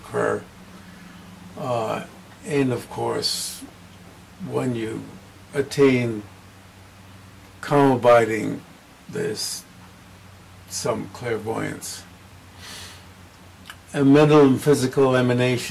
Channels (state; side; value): identical; both; correlation 1.00